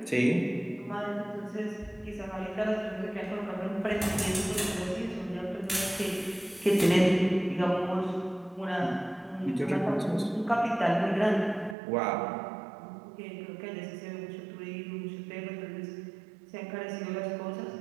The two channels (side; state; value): left; drops out; at 11.8 s